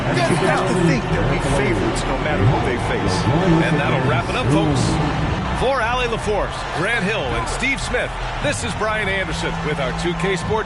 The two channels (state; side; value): identical; both; correlation 1.00